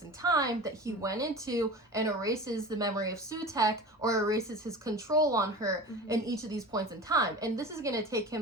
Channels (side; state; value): both; normal; correlation 0.34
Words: in time that he went into and erases the memory of Sutekh, or erases his control on her in each of these points in time. And this is going to take